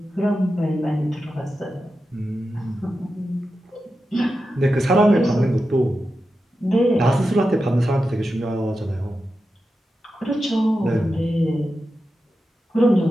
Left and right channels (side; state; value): both; normal; correlation 0.90